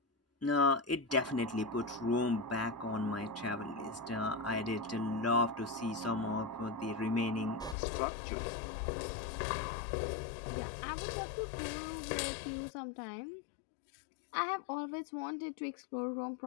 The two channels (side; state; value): right; drops out; at 7.8 s